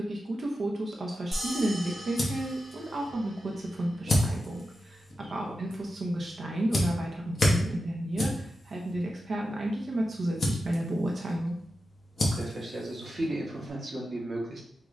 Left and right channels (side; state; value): both; normal; correlation 0.91